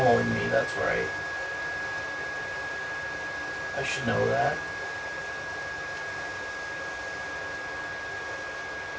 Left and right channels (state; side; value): identical; both; correlation 1.00